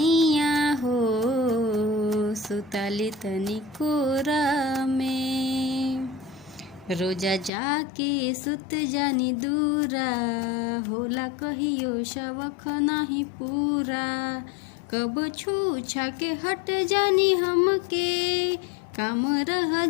हो सुताली तनी कोरा में। रोजा जाके सुत जानी दूरा, होला कहियो शवख नाही पूरा, कब छू छा के हट जानी हमके, काम रह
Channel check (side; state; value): right; drops out; at 7.5 s